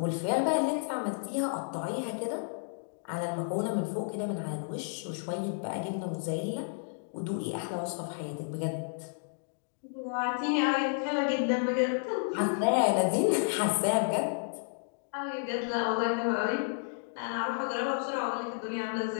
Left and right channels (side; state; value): right; silent; digital silence